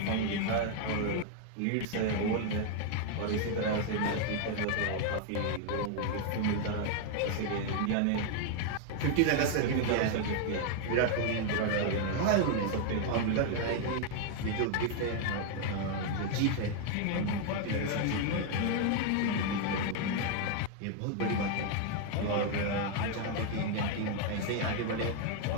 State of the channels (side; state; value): both; different; correlation 0.00